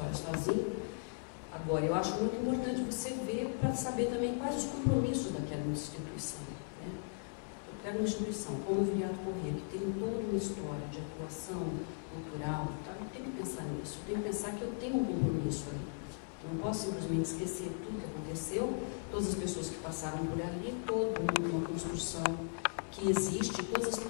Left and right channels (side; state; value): right; quieter; 38.7 dB